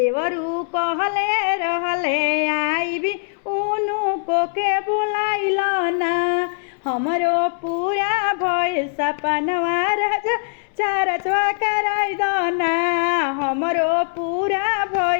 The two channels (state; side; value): silent; right; 63 dB below the other